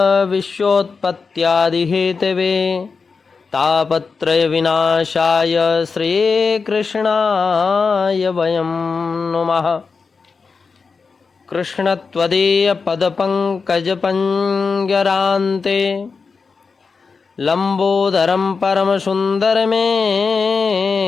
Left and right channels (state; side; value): quieter; right; 4.9 dB